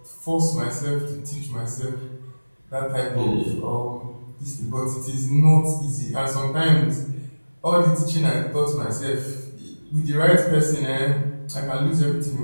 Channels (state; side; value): inverted; both; correlation -1.00